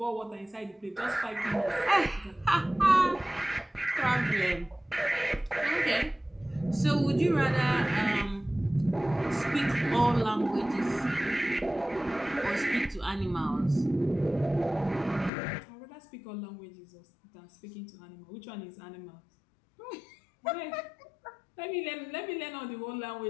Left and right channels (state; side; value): drops out; right; at 15.3 s